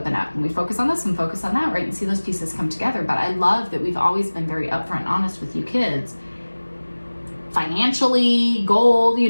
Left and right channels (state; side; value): inverted; both; correlation -1.00